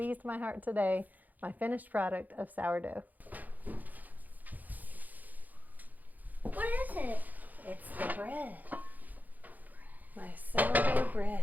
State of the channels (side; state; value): left; late; 0.082 ms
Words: my heart today, my finished product of sourdough. What is it? It's the bread. My sourdough bread.